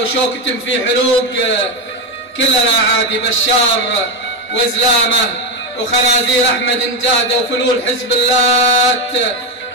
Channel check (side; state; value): both; normal; correlation 0.11